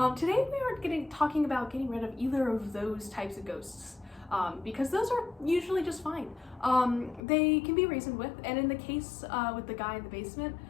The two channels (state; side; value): drops out; right; at 7.2 s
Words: today we are talking about getting rid of either of those types of ghosts. Because those are usually just fine. They can be reasoned with, and in the case with the guy in the basement,